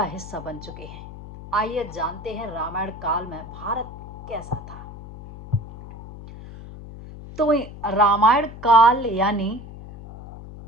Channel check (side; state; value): left; noise; hum, 13 dB below the sound